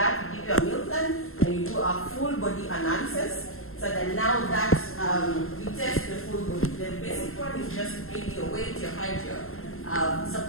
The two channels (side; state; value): right; late; 0.62 ms